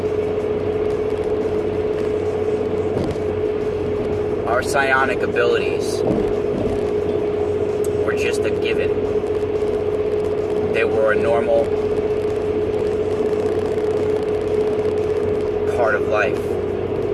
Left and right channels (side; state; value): both; identical; correlation 1.00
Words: Our psionic abilities were just a given. They were a normal part of life.